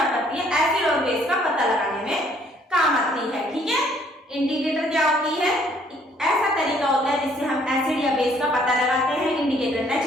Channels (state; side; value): normal; both; correlation 0.63